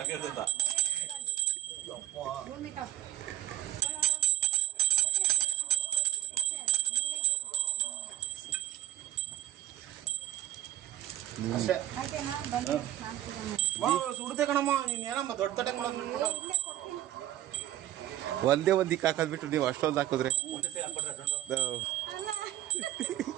ಇರ್ತೈತ. ಅಷ್ಟೇ ಸುಡ್ತೆ ಕಣಮ್ಮ. ನೀನ್ ಏನಮ್ಮ ದೊಡ್ಡ ತಟ್ಟೆ ಮಾಡೋದು? ಒಂದೇ ಒಂದಿಕ್ಕೆ ಹಾಕೋದ್ಬಿಟ್ಟು ನೀವು ಅಷ್ಟೊಂದು ಹಾಕಿದ್ರೆ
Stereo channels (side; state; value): left; quieter; 14.5 dB